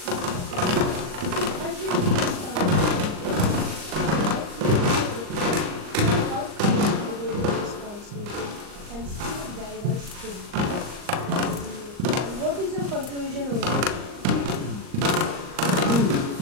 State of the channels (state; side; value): late; left; 39 ms